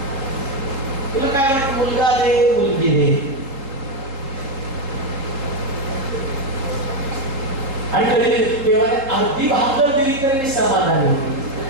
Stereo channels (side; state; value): left; late; 3.7 ms